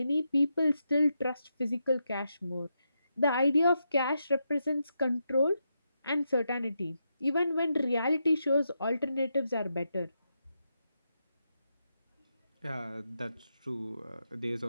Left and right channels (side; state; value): both; inverted; correlation -0.84